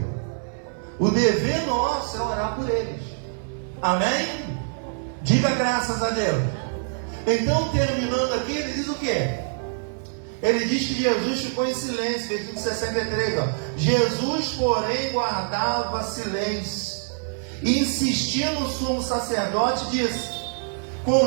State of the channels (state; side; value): silent; left; 62 dB below the other